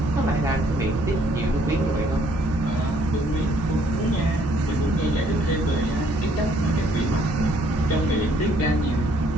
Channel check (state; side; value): normal; both; correlation 0.64